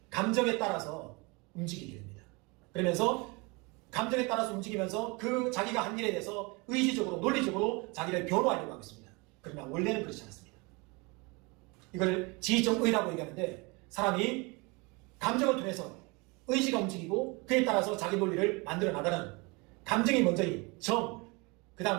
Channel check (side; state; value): left; quieter; 27.8 dB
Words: 감정에 따라서 움직이게 됩니다. 그러면서 감정에 따라서 움직이면서 그 자기가 한 일에 대해서 의지적으로 논리적으로 자기를 변호하려고 하고 있습니다. 그러나 원래는 그렇지 않습니다. 이걸 지정의라고 얘기하는데 사람이 감정을 통해서 의지가 움직이고 그에 따라서 자기 논리를 만들어 나가는 감정이 먼저인 정, 그